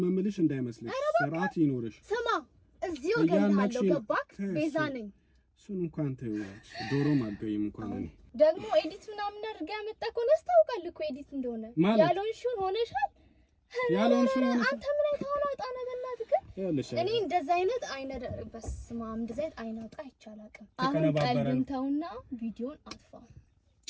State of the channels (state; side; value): identical; both; correlation 1.00